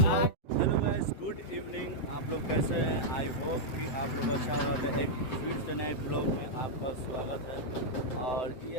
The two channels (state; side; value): late; right; 7.8 ms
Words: गुड इवनिंग, आप लोग कैसे हैं? आई होप कि आप लोग अच्छा होगा। एक फिर से नए ब्लॉग में आपका स्वागत है। और ये